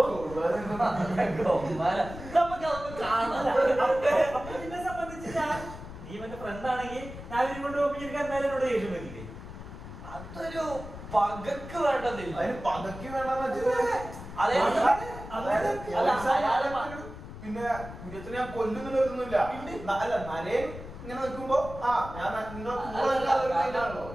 എന്നെ സംബന്ധിച്ച് നീ എന്റെ ഫ്രണ്ട് ആണെങ്കിൽ ഞാൻ ഇവരും കൊണ്ട് പോകുമ്പോൾ എനിക്ക് എന്തായാലും എന്നോട് ദേഷ്യം പറ്റില്ലേ? അതൊരു പകക്ക് വേണ്ടതില്ല. പകക്ക് വേണ്ടെന്ന് പിന്നെ കുര്യത്തിനെ ഞാൻ കൊല്ലുന്നില്ല. അല്ല നരേൻ ഇങ്ങനെ നിൽക്കുമ്പോ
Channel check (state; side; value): noise; left; rumble, 12 dB below the sound